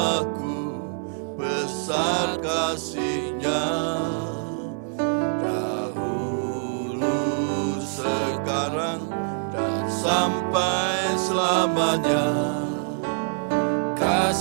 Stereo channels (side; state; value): left; silent; 61 dB below the other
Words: besar kasih-Nya. Sekarang dan sampai selamanya,